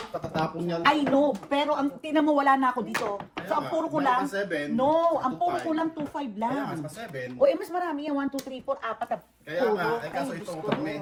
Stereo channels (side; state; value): both; identical; correlation 1.00